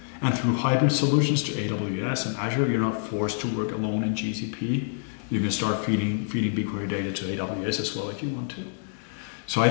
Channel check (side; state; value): right; silent; digital silence